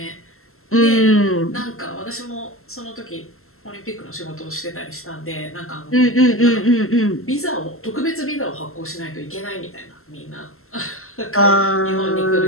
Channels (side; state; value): right; late; 0.62 ms